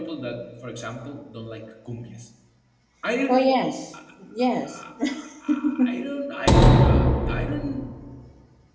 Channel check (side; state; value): both; identical; correlation 1.00